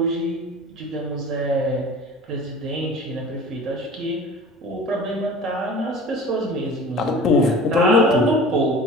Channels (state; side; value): normal; both; correlation 0.40